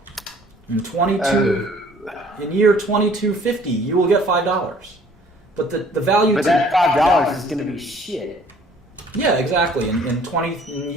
In year 2250, you will get $5. But the value. But that $5 is going to be shit. Yeah, exactly. In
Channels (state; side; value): normal; both; correlation 0.55